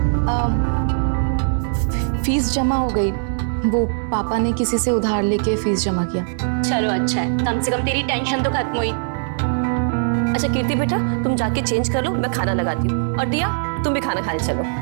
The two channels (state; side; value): silent; left; digital silence